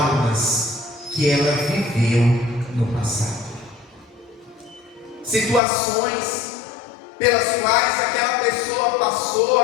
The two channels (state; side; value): drops out; right; at 5.6 s